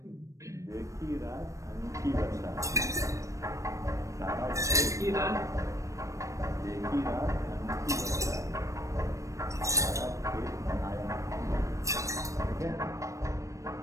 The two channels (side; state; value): left; late; 0.15 ms